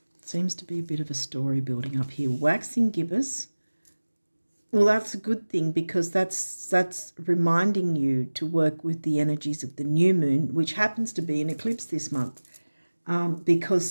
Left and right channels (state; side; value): inverted; both; correlation -1.00